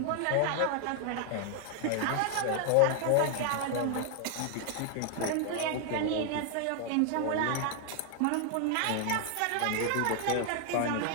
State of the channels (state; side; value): different; both; correlation 0.00